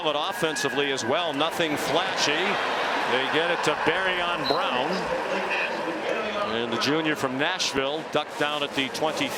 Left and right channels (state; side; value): identical; both; correlation 1.00